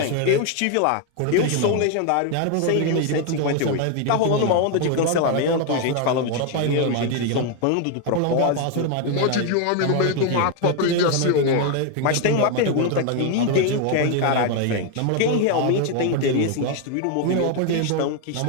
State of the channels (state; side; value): different; both; correlation 0.01